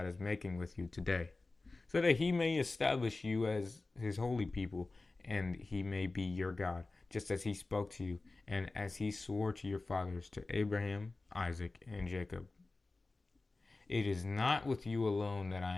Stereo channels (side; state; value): right; quieter; 3.4 dB